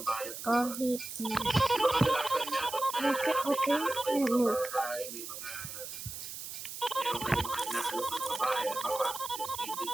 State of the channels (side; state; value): right; noise; hiss, 9 dB below the sound